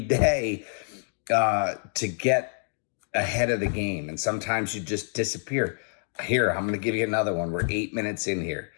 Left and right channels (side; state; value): right; silent; 56 dB below the other